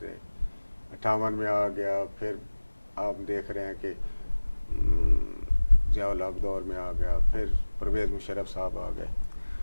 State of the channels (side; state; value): both; inverted; correlation -1.00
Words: رہے، 58 میں آ گیا، پھر آپ دیکھ رہے ہیں کہ ضیاء الحق دور میں آ گیا، پھر پرویز مشرف صاحب آ گئے،